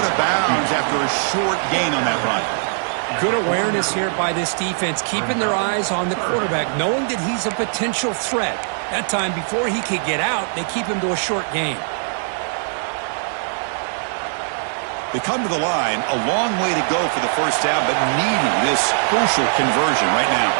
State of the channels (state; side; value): silent; left; digital silence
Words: of bounds after a short gain on that run. Good awareness here by this defense, keeping their eyes on the quarterback, knowing that he's a potential threat. That time, before he could get out, they keep him to a short gain. They come to the line, a long way to go for the first down, but needing this crucial conversion right now.